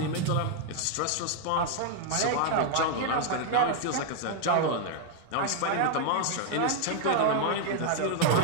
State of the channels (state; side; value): different; both; correlation 0.00